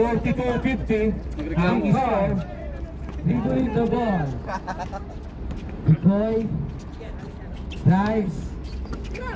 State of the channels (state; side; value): identical; both; correlation 1.00